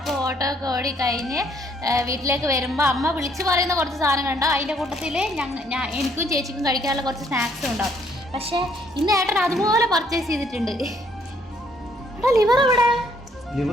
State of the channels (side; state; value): both; normal; correlation 0.66